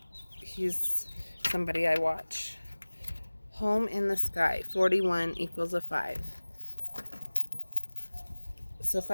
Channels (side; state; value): both; inverted; correlation -1.00